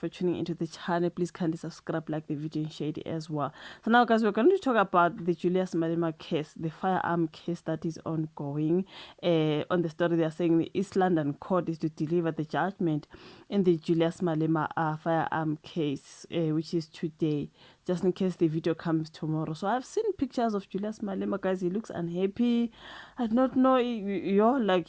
tuning into the channel. Please kindly subscribe, like the video, and share it as well. So now, guys, we're going to talk about the Julius Malema case, the firearm case that is ongoing. On the story, they are saying the East London court is to deliver the judgment in the Julius Malema firearm case, which is today, just in case the video comes tomorrow. So I've seen pictures of Julius Malema, guys. He looks unhappy. I do not know, like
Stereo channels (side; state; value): both; identical; correlation 1.00